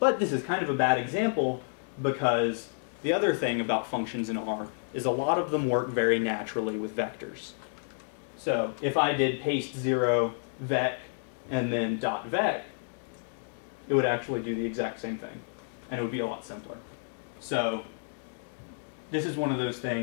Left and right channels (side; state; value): right; silent; digital silence